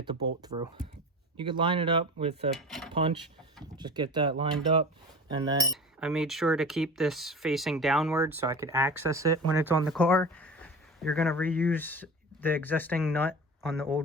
the bolt through. You could line it up with a punch, just get that lined up. And then I made sure to keep this facing downward so I could access it when it's on the car. You're going to reuse the existing nut on the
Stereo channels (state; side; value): normal; both; correlation 0.34